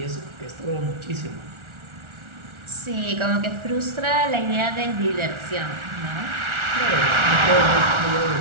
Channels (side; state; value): left; late; 1.4 ms